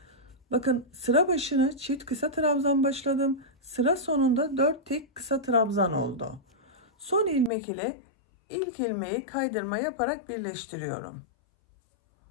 Bakın sıra başına çift kısa trabzan başladım. Sıra sonunda 4 tek kısa trabzan oldu. Son ilmek ile ilk ilmeği kaydırma yaparak birleştiriyorum.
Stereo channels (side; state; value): right; drops out; at 7.5 s